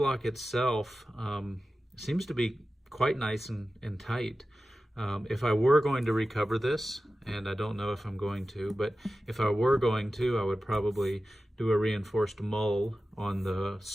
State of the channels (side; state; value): both; normal; correlation 0.94